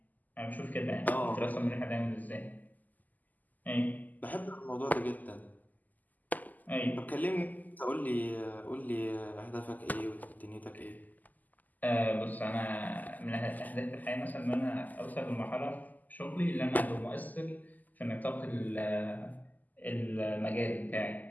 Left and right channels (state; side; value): late; right; 0.082 ms